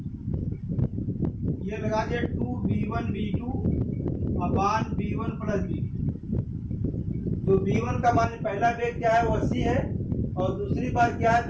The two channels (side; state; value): both; identical; correlation 1.00